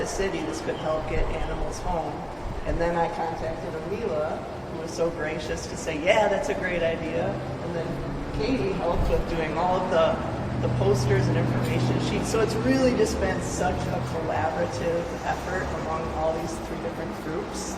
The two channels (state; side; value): identical; both; correlation 1.00